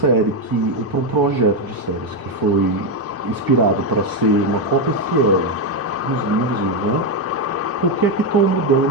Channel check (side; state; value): both; normal; correlation 0.06